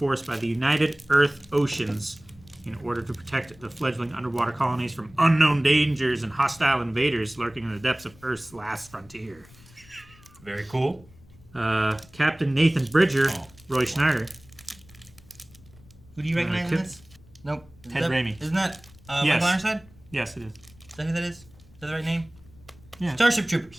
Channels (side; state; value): left; noise; rumble, 25 dB below the sound